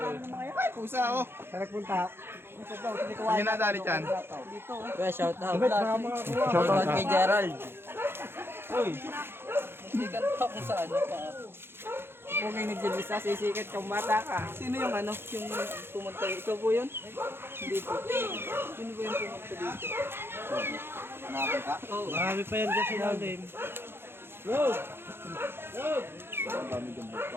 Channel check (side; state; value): left; late; 0.11 ms